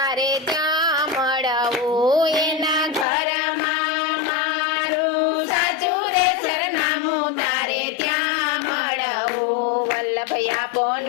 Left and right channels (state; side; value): drops out; right; at 3.1 s